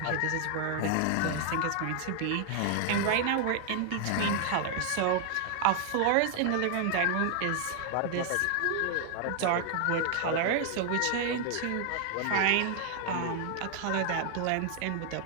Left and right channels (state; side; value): different; both; correlation 0.00